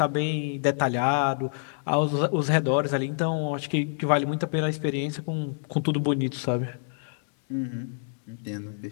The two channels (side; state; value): right; silent; digital silence